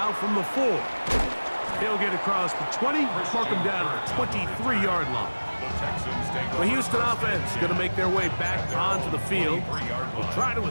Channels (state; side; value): inverted; both; correlation -1.00